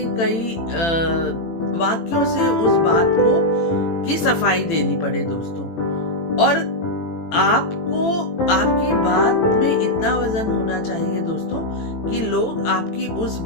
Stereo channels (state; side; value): late; right; 18 ms